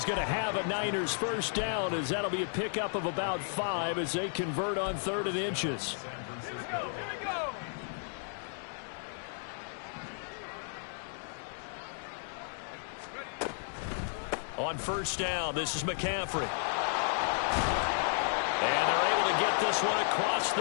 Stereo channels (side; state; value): right; silent; digital silence